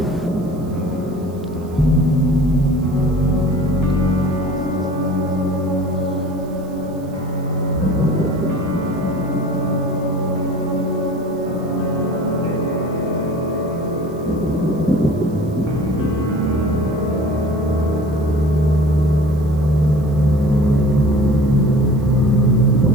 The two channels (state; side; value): noise; right; hiss, 28 dB below the sound